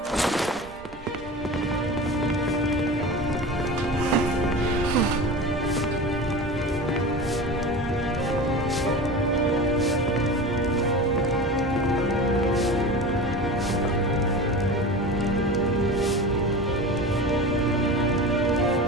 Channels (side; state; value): both; normal; correlation 0.30